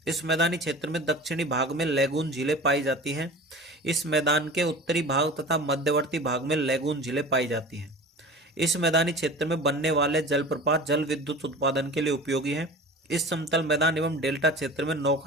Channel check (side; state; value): both; normal; correlation 0.37